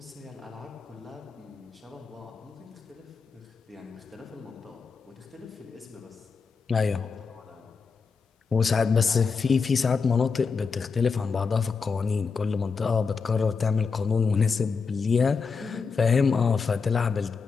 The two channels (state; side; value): quieter; right; 5.2 dB